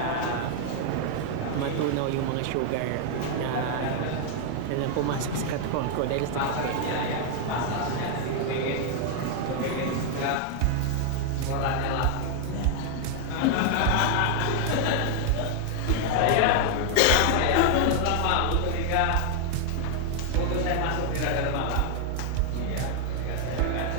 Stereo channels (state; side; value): different; both; correlation 0.00